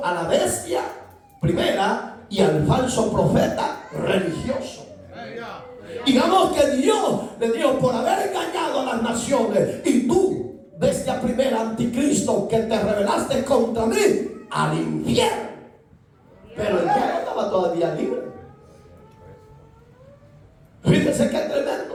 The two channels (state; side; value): identical; both; correlation 1.00